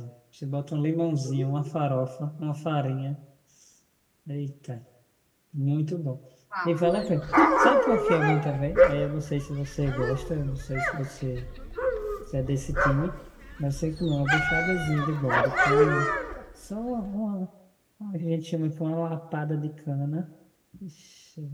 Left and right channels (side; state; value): both; identical; correlation 1.00